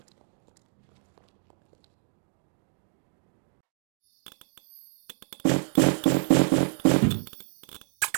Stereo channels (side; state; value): left; silent; digital silence